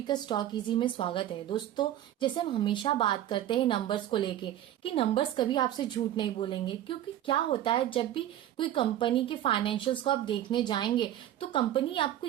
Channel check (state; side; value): quieter; left; 12.3 dB